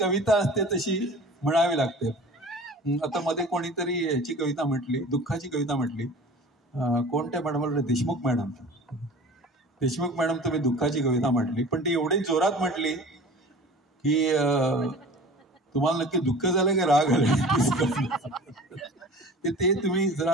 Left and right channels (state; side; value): normal; both; correlation 0.42